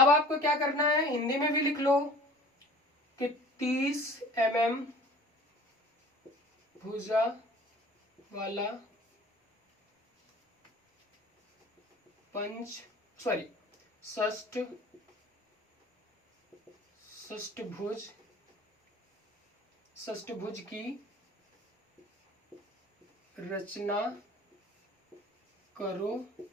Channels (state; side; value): normal; both; correlation 0.45